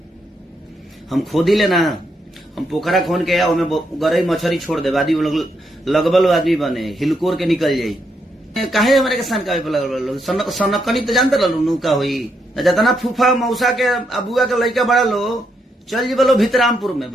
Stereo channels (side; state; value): both; normal; correlation 0.78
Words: हम खोदी लेना हम पोखरा खोन के ओमे गरई मछरी छोड़ दे आदमी लगबल आदमी बने हिलकोर के निकल जाई काहे हमारे के सनकावे पे लगल सनकनी तो जानते रहलू नु का होई जतना फूफा मौसा के अबुआ के लड़का बड़ा लो चल जी बोलो भितरामपुर में